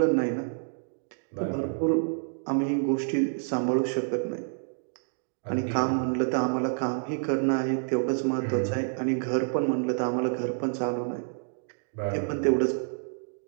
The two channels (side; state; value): left; silent; digital silence